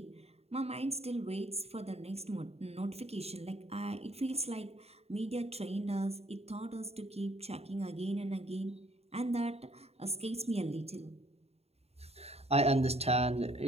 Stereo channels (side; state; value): left; late; 0.30 ms